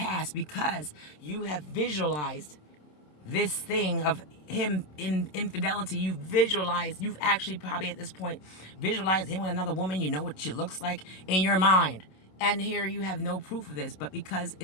because you have visualized this thing of him in infidelity. You've actually probably at this point visualized him with another woman. You know what she looks like in your mind. And here you have no proof of this, but because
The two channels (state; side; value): late; right; 27 ms